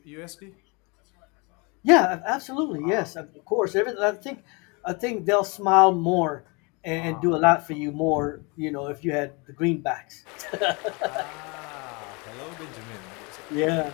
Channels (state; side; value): quieter; right; 29.6 dB